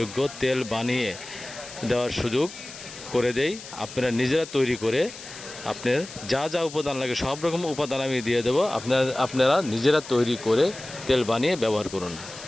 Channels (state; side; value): noise; left; hiss, 14 dB below the sound